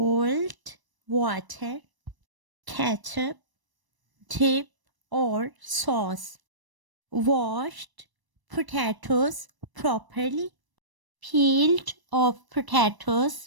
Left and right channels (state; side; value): late; left; 1.0 ms